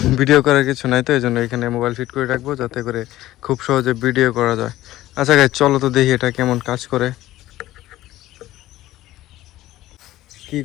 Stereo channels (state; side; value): quieter; right; 15.5 dB